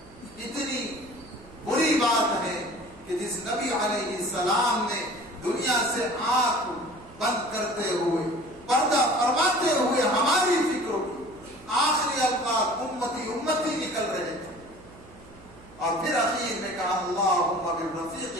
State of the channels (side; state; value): right; noise; hum, 22 dB below the sound